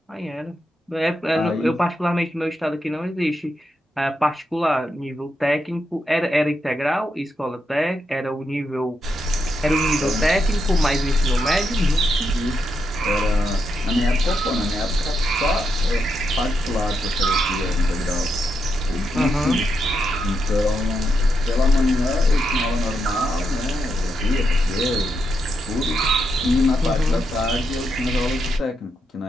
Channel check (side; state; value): both; normal; correlation 0.83